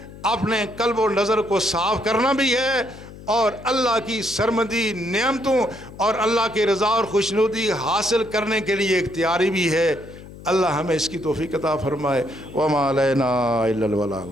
اپنے قلب و نظر کو صاف کرنا بھی ہے، اور اللہ کی سرمدی نعمتوں اور اللہ کی رضا اور خوشنودی حاصل کرنے کے لیے اختیاری بھی ہے. اللہ ہمیں اس کی توفیق عطا فرمائے. وما علینا الا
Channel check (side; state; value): left; noise; hum, 16 dB below the sound